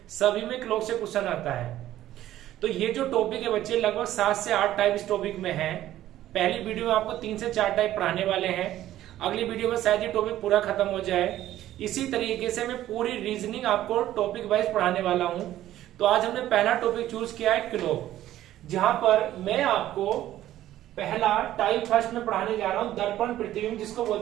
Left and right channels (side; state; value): left; quieter; 13.5 dB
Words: सभी में क्लॉक से क्वेश्चन आता है। तो ये जो टॉपिक है बच्चे, लगभग 7 से 8 टाइप इस टॉपिक में है। पहली वीडियो में आपको 3 से 4 टाइप पढ़ाने वाले हैं। अगली वीडियो में शायद ये टॉपिक पूरा खत्म हो जाए। इसी तरीके से मैं पूरी रीजनिंग आपको टॉपिक वाइज पढ़ाने वाला हूं। तो आज हमने पहला टॉपिक चूज किया है क्लॉक, जहां पर मैं आपको पहला टाइप फर्स्ट में पढ़ाने जा रहा हूं दर्पण प्रतिबिंब, जिसको